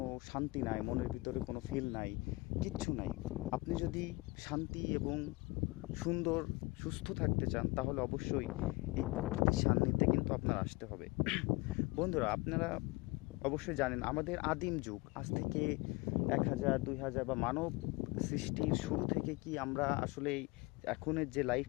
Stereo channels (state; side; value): quieter; right; 23.9 dB